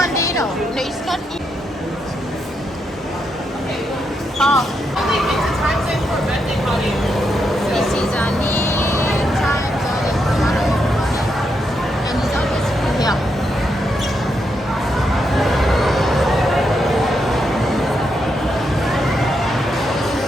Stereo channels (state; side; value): normal; both; correlation 0.81